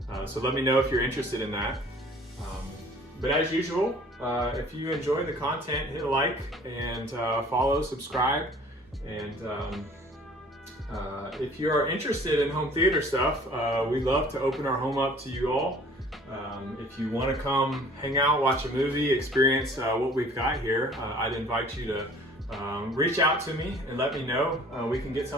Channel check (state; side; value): normal; both; correlation 0.51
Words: So let me know if you're interested in that. But as usual, if you enjoy the content, hit a like and follow, subscribe. And if you're interested in home theater stuff, we'd love to open our home up to you all. If you want to come hang out, watch a movie, experience what we've got here, I'd invite you to reach out to me and let me know. We can get